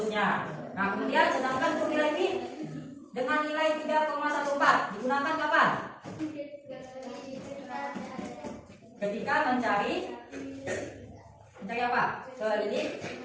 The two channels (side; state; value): both; identical; correlation 1.00